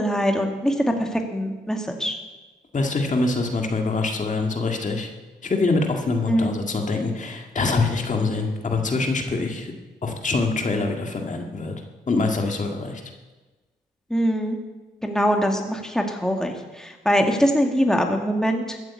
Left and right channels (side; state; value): both; normal; correlation 0.78